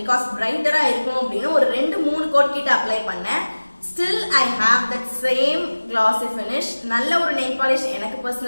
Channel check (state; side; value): inverted; both; correlation -1.00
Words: பிகாஸ் பிரைட்டரா இருக்கும் அப்படின்னு ஒரு 2-3 கோட் கிட்ட அப்ளை பண்ணேன். Still I have that same glossy finish. நல்ல ஒரு நெயில் பாலிஷ் எனக்கு